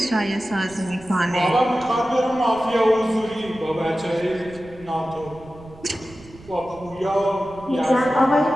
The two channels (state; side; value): noise; right; rumble, 21 dB below the sound